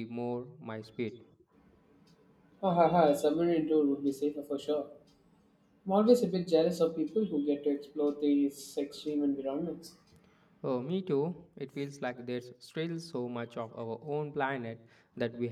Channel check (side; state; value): both; identical; correlation 1.00